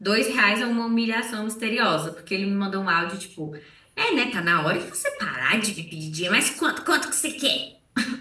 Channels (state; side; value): identical; both; correlation 1.00